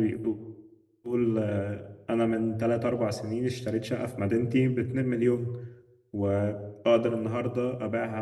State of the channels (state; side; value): identical; both; correlation 1.00